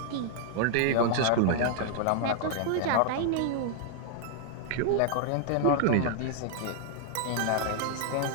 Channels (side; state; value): both; different; correlation -0.01